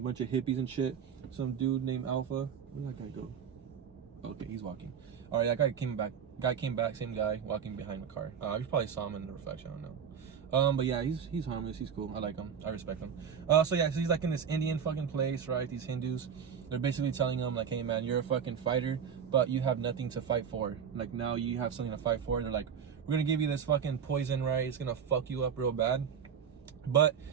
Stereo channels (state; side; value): quieter; left; 7.5 dB